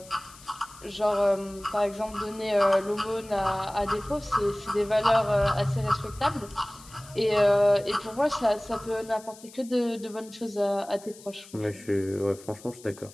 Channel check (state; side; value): noise; left; hiss, 20 dB below the sound